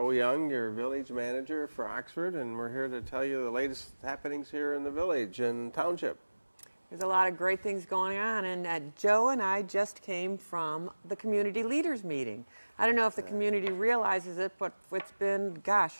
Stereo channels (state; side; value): inverted; both; correlation -1.00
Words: Young, your Village Manager for Oxford, and we're here to tell you the latest happenings here in the village and township. There's a lot of great things going on, and Joe and I just came from the community leaders meeting. I don't know if the community realizes it, but it's been,